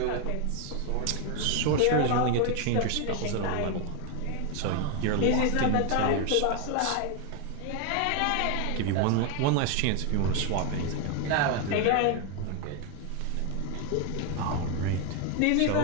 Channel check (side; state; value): both; different; correlation 0.01